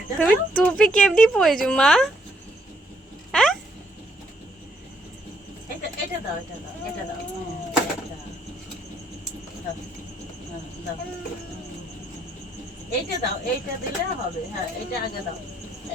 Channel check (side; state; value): both; normal; correlation 0.71